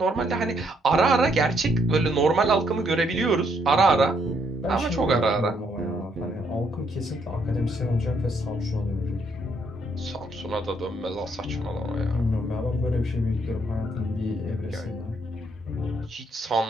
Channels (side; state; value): both; normal; correlation 0.72